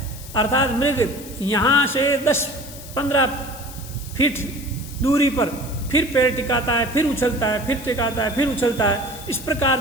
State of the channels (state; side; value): noise; left; hiss, 15 dB below the sound